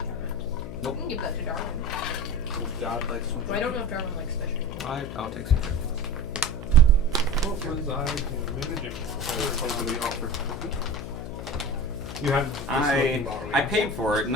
Nope. You can give that to Darwin. Well, God likes some. Well, I don't know if Darwin likes fishing. I'll take some care. What was I managing? Somebody offered cookie. You have this looking bottle, I yeah. paid for it and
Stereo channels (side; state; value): left; noise; hum, 8 dB below the sound